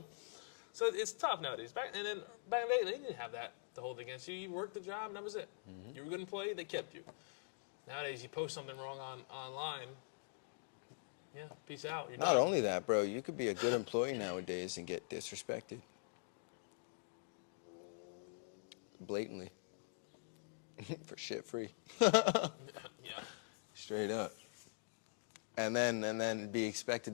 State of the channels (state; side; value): silent; right; digital silence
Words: So it's tough nowadays. Back in the day, they didn't have that to hold against you. You worked the job and that was it. You were a good employee, they kept you. Nowadays, you post something wrong online. Yeah, peace out. You're done. Not only that, bro, you could be a good employee nowadays and get disrespected. Blatantly. For shit free. Yeah. Straight up. And then be expected